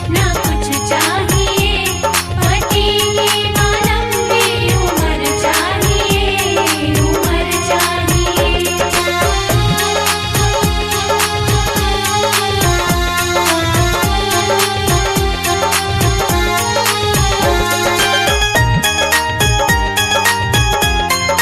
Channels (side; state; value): both; identical; correlation 1.00